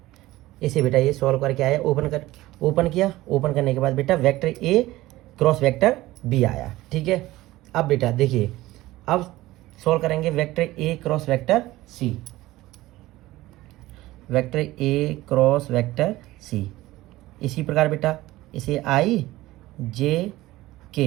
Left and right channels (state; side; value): quieter; left; 17.5 dB